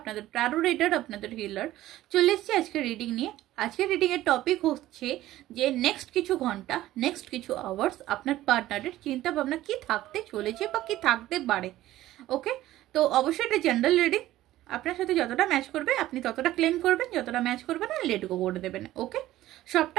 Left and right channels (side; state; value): left; quieter; 15.0 dB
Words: टैरो रीडर आपनादेर हिलार चले एसेछि आजके रिडिंग निये। आजके रिडिंग एर टपिक होच्छे जे नेक्स्ट किछु घंटा नेक्स्ट किछु आवार्स आपनार पार्टनारेर चिंता भावना कि थाकते चलेछे बा कि थाकते पारे। ओके, तो अवश्यई एटा जनरल रिडिंग, आपनार साथे যতটা ম্যাচ করবে আপনি ততটা ক্লেম করবেন, যতটা ম্যাচ করবে না লেট গো করে দেবেন। ওকে,